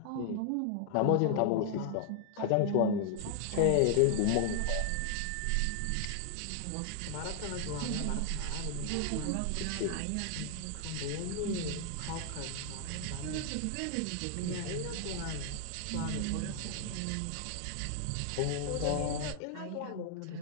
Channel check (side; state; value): both; different; correlation 0.00